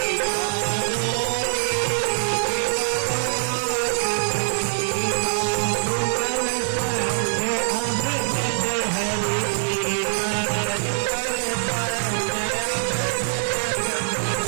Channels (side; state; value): left; silent; 61 dB below the other